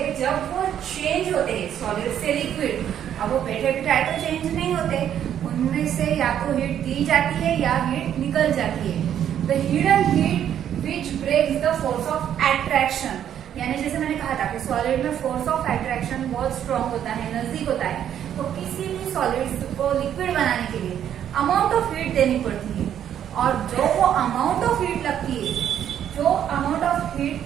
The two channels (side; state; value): left; quieter; 9.9 dB